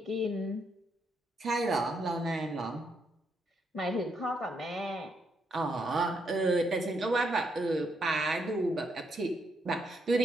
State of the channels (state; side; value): normal; both; correlation 0.77